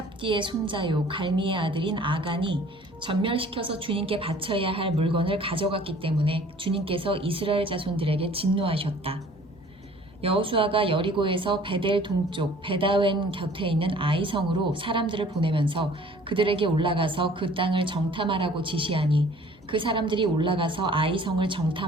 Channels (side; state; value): both; normal; correlation 0.52